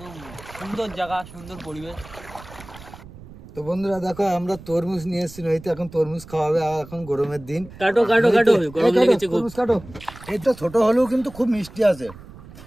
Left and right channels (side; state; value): right; noise; rumble, 18 dB below the sound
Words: সুন্দর জায়গা, সুন্দর পরিবেশ। তো বন্ধুরা দেখো, আমরা তরমুজ নিয়ে এসেছি নইতে, এখন তরমুজ খাওয়াবে। আর এখন গরমের দিন, কাটো কাটো কাটো, গরম লেগেছে খুব। তরমুজ কাটো। এই তো ছোট হলেও কিন্তু খুব মিষ্টি আছে,